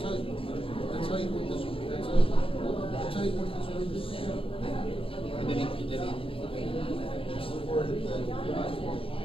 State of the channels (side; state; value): right; late; 0.27 ms